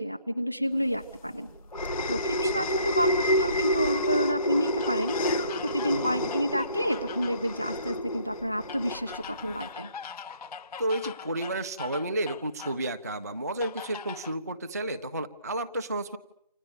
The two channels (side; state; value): both; inverted; correlation -0.62